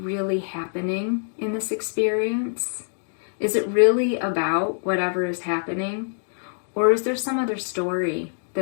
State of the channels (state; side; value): silent; right; digital silence